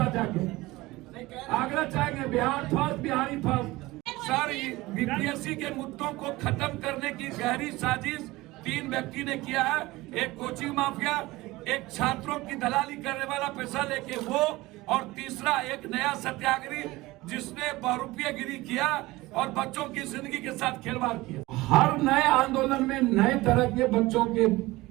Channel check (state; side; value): quieter; left; 19.9 dB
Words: जाके आगरा चाहेंगे Bihar first, Bihari first. Sir, BPSC के मुद्दों को खत्म करने की गहरी साजिश 3 व्यक्ति ने किया है। एक कोचिंग माफिया, एक छात्रों की दलाली करने वाला पैसा लेके वो, और तीसरा एक नया सत्याग्रही जिसने बहुरूपियागिरी किया और बच्चों की जिंदगी के साथ खिलवाड़ किया। हर नए आंदोलन में नए तरह के बच्चों के